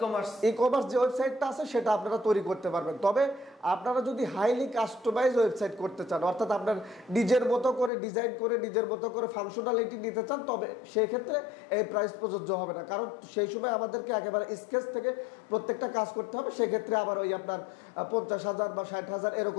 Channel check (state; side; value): drops out; right; at 7.9 s